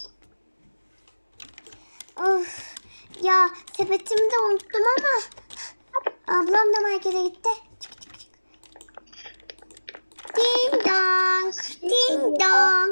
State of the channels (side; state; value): both; inverted; correlation -1.00